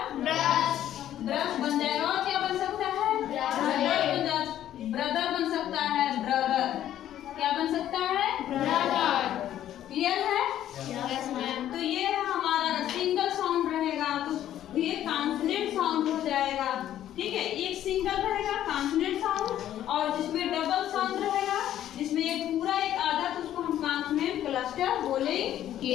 ब्रश बन जाएगा। और क्या बन सकता है? ब्रदर बन सकता है। ब्रदर क्या बन सकता है? ब्रदर। क्लियर है? Yes ma'am. तो ये हमारा सिंगल साउंड रहेगा तो ये कॉन्सोनेंट साउंड हो जाएगा। ठीक है, एक सिंगल रहेगा कॉन्सोनेंट साउंड, और जिसमें डबल साउंड रहेगा, जिसमें एक पूरा एक आधा, तो उसको हम कॉन्सोनेंट क्लस्टर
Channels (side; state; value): right; quieter; 11.8 dB